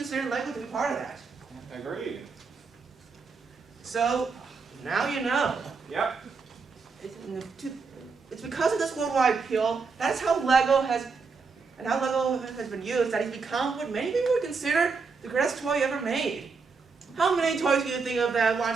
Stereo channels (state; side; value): quieter; left; 4.8 dB